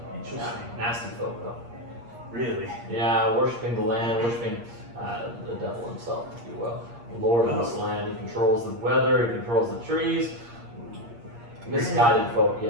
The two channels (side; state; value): left; late; 8.5 ms